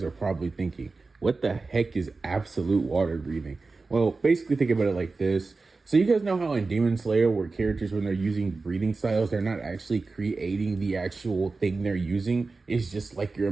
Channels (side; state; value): left; quieter; 3.9 dB